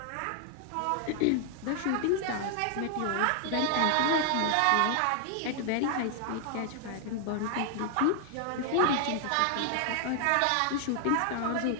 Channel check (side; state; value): both; different; correlation 0.00